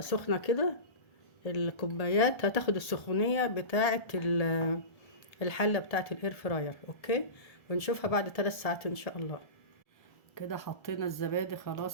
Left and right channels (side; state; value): right; late; 1.3 ms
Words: سخنه كده، الكوبايات هتاخد السخونيه بتاعه الحله بتاعه الاير فراير. اوكي. ونشوفها بعد 3 ساعات ان شاء الله. كده حطينا الزبادي